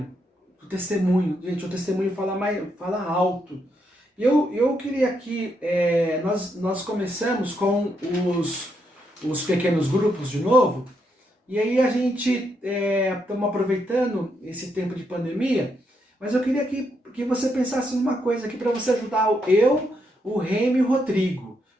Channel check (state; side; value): normal; both; correlation 0.79